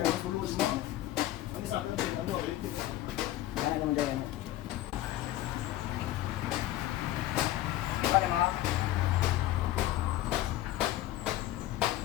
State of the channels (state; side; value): quieter; right; 14.7 dB